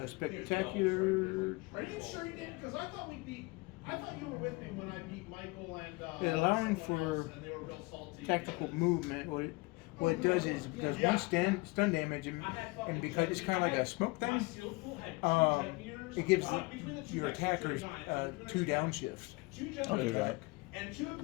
each. spectacular. Are you sure you did? Because I thought I thought you were with me when I beat Michael and Allowing someone for else, and they were real salty. Tactical movement. What it does is it does Yeah. one stun damage, and because it's kind of like a smoke My thing, seal pool had two jet meters. it gives Between the two your decks, attackers two giants, 2 downshifts. Two jet I'll do meters, that. And 2 of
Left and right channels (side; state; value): right; quieter; 25.3 dB